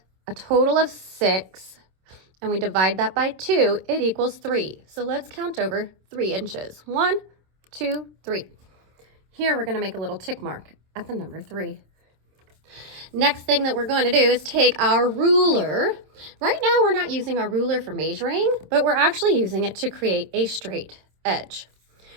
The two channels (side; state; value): left; late; 27 ms